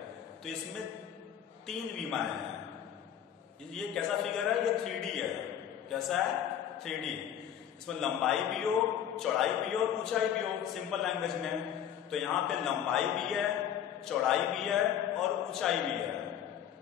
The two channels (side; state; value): right; quieter; 9.8 dB